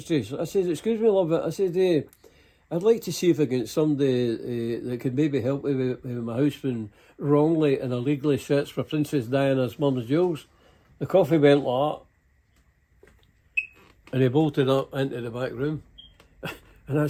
I says, excuse me, love, I said, I'd like to see if I get somebody that could maybe help me with my house being wrongly and illegally searched for Princess Diana's mum's jewels. The coffee went like that. And he bolted up into the back room. And I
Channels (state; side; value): identical; both; correlation 1.00